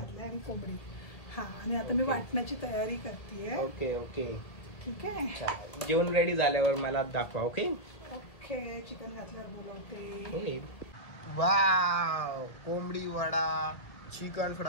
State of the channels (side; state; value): right; late; 1.5 ms